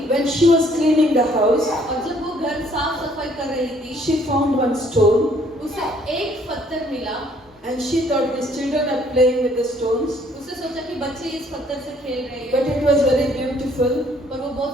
When she was cleaning the house, और जब वो घर साफ सफाई कर रही थी, she found one stone. उसे एक पत्थर मिला। And she thought these children are playing with the stones. उसने सोचा कि बच्चे इस पत्थर से खेल रहे हैं, But it was very beautiful. पर वो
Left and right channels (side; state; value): both; normal; correlation 0.63